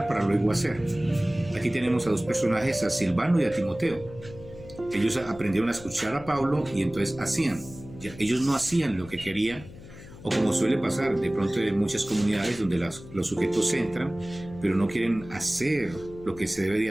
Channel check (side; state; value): left; noise; hum, 17 dB below the sound